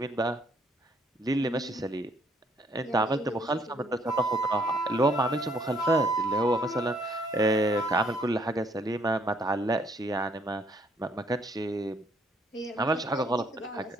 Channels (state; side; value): normal; both; correlation 0.66